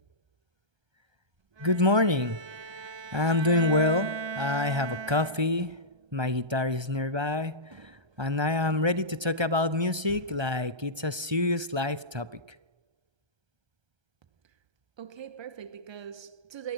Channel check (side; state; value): left; late; 1.3 ms